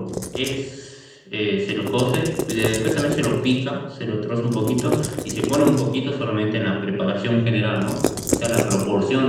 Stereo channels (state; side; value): identical; both; correlation 1.00